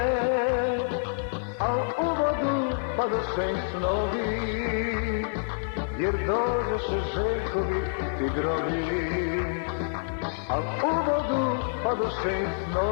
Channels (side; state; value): right; silent; 57 dB below the other